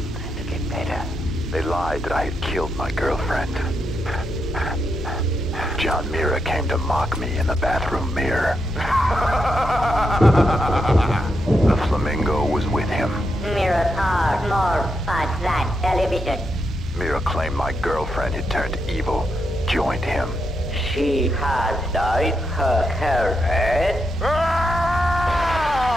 to get better. They lied that I had killed my girlfriend. John Mira came to mock me in the bathroom mirror. The flamingo was with him. Mirrors are more fun than television. Mira claimed my girlfriend had turned evil, joined him. She has dyed her hair red. I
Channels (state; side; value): normal; both; correlation 0.83